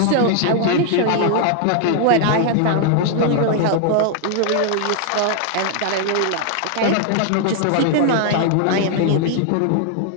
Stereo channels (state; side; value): different; both; correlation 0.00